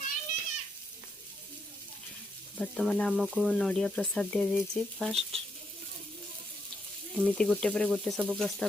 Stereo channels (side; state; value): both; normal; correlation 0.79